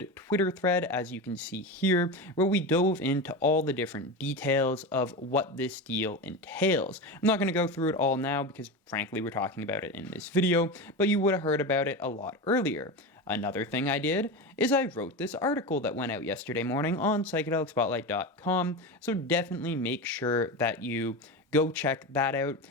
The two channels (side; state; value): both; normal; correlation 0.22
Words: Twitter thread, as you can see here, where we dove into all the different details of what this deal entails. I'm not going to go through it all now because, frankly, we're talking about it in this video, but you would have heard about it a lot earlier. Another thing I did is I wrote this article that went out yesterday morning on psychedelicspotlight.com, so definitely make sure that you go check that out.